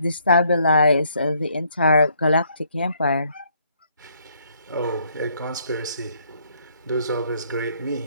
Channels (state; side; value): inverted; both; correlation -0.68